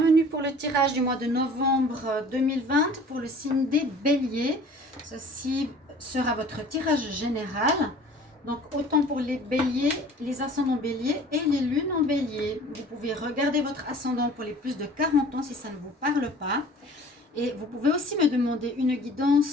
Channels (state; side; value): normal; both; correlation 0.47